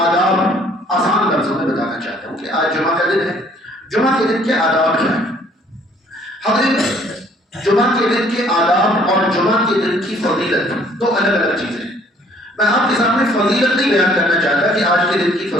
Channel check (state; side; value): normal; both; correlation 0.60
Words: آسان لفظوں میں بتانا چاہتا ہوں کہ آج جمعہ کا دن ہے، جمعہ کے دن کے آداب کیا ہیں؟ حضرت جمعہ کے دن کے آداب اور جمعہ کے دن کی فضیلت دو الگ الگ چیزیں ہیں۔ میں آپ کے سامنے فضیلت نہیں بیان کرنا چاہتا کہ آج کے دن کی